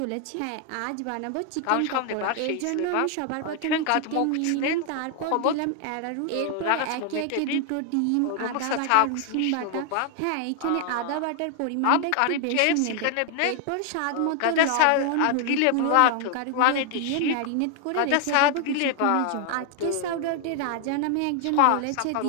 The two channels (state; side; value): different; both; correlation 0.00